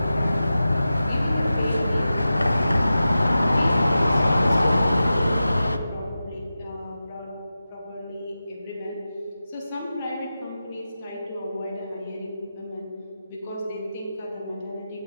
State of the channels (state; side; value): inverted; both; correlation -0.93